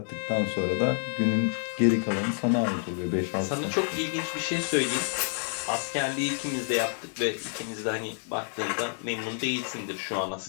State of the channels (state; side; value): silent; right; 59 dB below the other